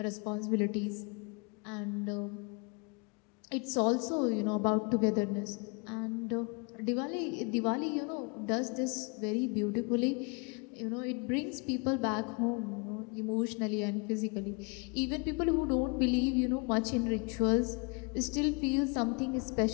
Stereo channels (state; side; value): quieter; right; 32.0 dB